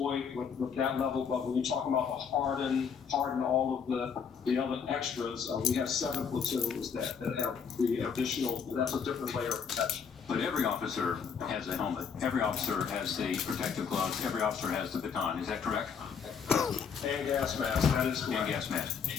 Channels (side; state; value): right; quieter; 6.6 dB